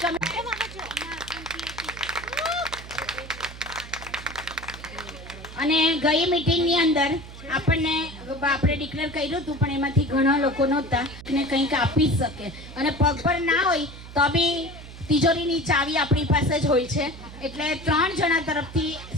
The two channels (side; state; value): right; noise; hum, 14 dB below the sound